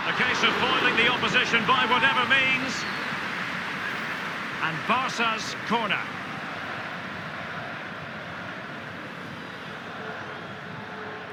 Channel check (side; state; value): both; identical; correlation 1.00